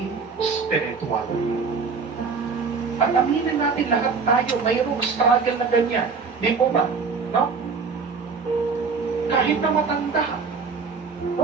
spiritual. At aminin natin lahat tayo, mayroong struggle na ganyan. Di po ba? No? Kahit na matanda.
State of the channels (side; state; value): left; quieter; 5.1 dB